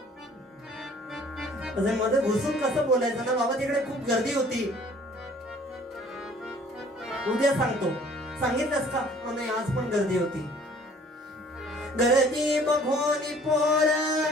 असं मध्ये घुसून कसं बोलायचं ना बाबा, तिकडे खूप गर्दी होती. उद्या सांगतो. सांगितलंस का? नाही, आज पण गर्दी होती. गर्दी बघून पोर,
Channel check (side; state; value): both; normal; correlation 0.54